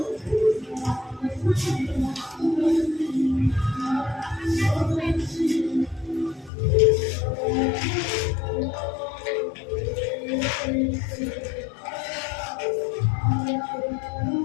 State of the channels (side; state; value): right; drops out; at 6.5 s